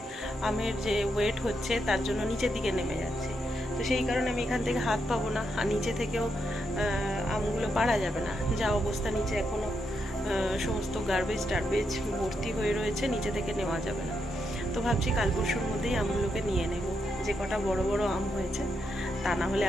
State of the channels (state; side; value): normal; both; correlation 0.82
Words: আমের যে ওয়েট হচ্ছে তার জন্য নিচের দিকে নেমে যাচ্ছে। তো সেই কারণে আমি এখান থেকে হাত পাবো না, আর নিচে থেকেও আমগুলো পাড়া যাবে না। যা অবস্থা নিচে এখনও সমস্ত গার্বেজ টার্বেজ ভর্তি হয়ে রয়েছে, নিচে থেকে নেওয়া যাবে না। তো ভাবছি কাল পরশুর মধ্যেই আমগুলোকে নিয়ে নেব, যে কটা বড় বড় আম হয়েছে, তা না হলে